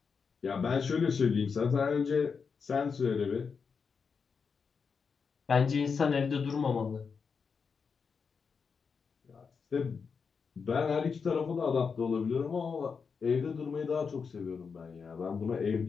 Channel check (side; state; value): right; quieter; 5.6 dB